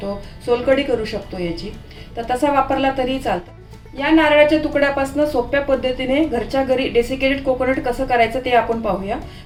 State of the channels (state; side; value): identical; both; correlation 1.00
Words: सोलकढी करू शकतो याची. तर तसा वापरला तरी चालतं. या नारळाच्या तुकड्यापासून सोप्या पद्धतीने घरच्या घरी डेसिकेटेड कोकोनट कसं करायचं ते आपण पाहूया.